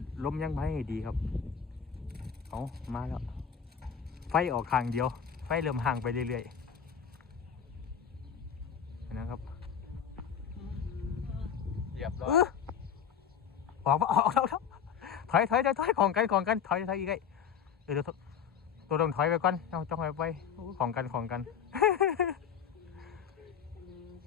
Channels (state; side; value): quieter; right; 7.6 dB